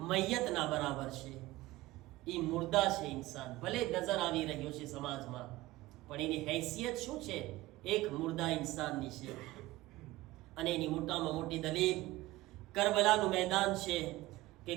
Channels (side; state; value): left; quieter; 18.2 dB